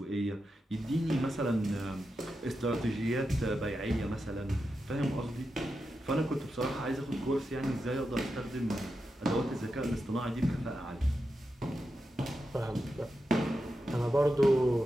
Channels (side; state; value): both; normal; correlation 0.89